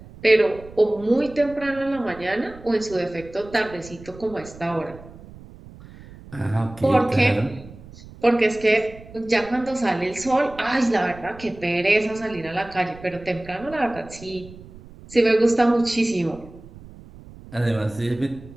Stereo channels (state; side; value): noise; right; rumble, 19 dB below the sound